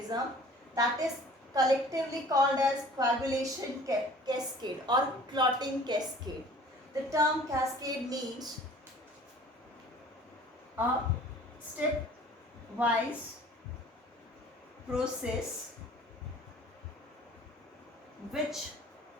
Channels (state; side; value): normal; both; correlation 0.48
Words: that is collectively called as coagulation cascade or clotting cascade. The term cascade means a step-wise process which